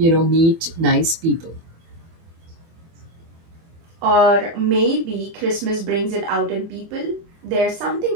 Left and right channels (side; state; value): left; late; 24 ms